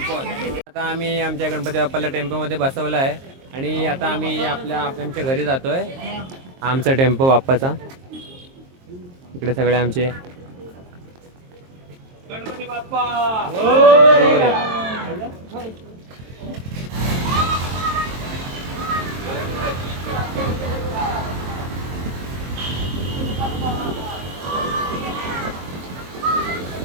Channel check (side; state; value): left; late; 23 ms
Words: आता आम्ही आमच्या गणपती बाप्पाला टेम्पोमध्ये बसवलं आहे. आणि आता आम्ही आमच्या घरी जातोय. आमचा टेम्पो बाप्पाचा. इकडे सगळे आमचे गणपती बाप्पा.